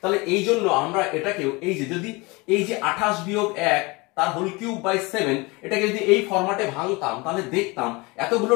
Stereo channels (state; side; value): quieter; right; 25.2 dB